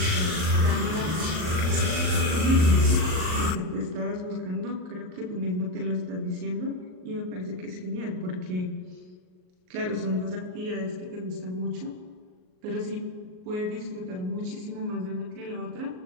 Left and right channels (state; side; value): late; left; 38 ms